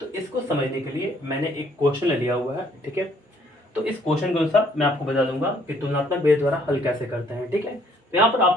तो इसको समझने के लिए मैंने एक क्वेश्चन लिया हुआ है, ठीक है। तो इस क्वेश्चन के अनुसार मैं आपको बता दूंगा कि तुलनात्मक विधि द्वारा हल कैसे करते हैं, ठीक है। तो यहाँ पर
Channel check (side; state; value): both; normal; correlation 0.64